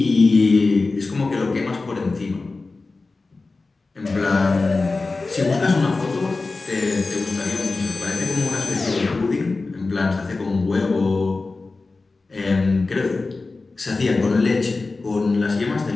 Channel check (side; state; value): right; quieter; 3.7 dB